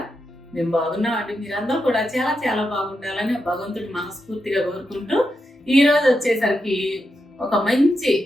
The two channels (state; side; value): normal; both; correlation 0.86